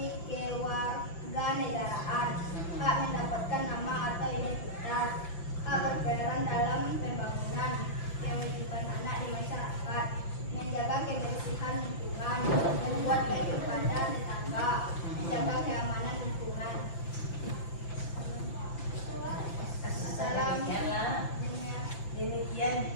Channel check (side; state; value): right; late; 5.9 ms